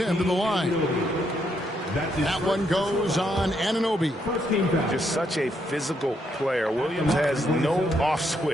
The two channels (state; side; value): normal; both; correlation 0.76